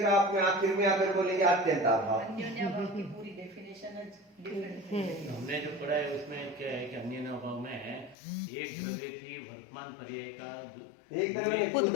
आप में आखिर में आकर बोलेंगे अत्यंत अभाव। अन्योन्याभाव की पूरी डेफिनेशन डिफरेंट है। हमने जो पढ़ा है उसमें क्या है कि अन्य अभाव में एक द्रव्य की वर्तमान पर्याय का एक द्रव्य में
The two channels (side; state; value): right; drops out; at 8.2 s